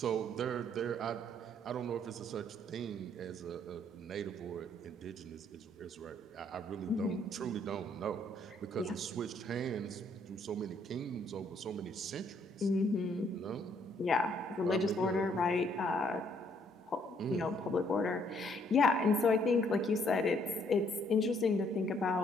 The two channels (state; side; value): normal; both; correlation 0.67